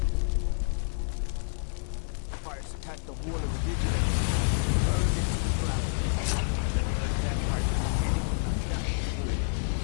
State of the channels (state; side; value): silent; right; 59 dB below the other